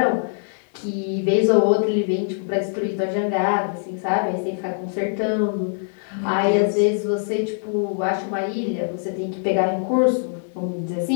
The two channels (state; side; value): silent; right; 64 dB below the other